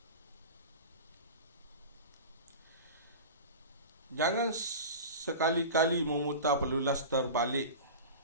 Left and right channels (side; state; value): both; inverted; correlation -0.31